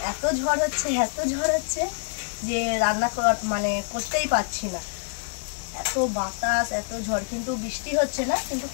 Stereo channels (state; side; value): silent; right; 61 dB below the other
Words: এত ঝড় হচ্ছে যে রান্না করতেই পারছি না। এত বাতাস, এত ঝড়, কিন্তু বৃষ্টি হচ্ছে না, কিন্তু